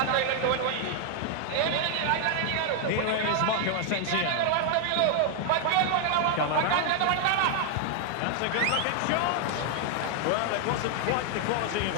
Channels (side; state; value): both; different; correlation 0.00